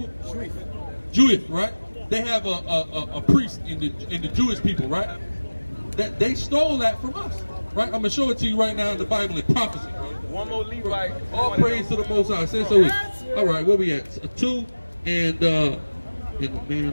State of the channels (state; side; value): inverted; both; correlation -1.00